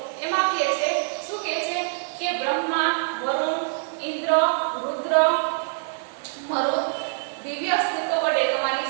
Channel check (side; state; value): left; silent; 62 dB below the other